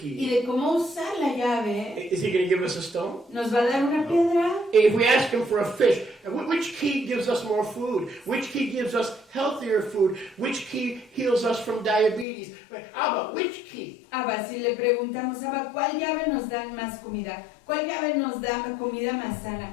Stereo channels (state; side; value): drops out; right; at 12.2 s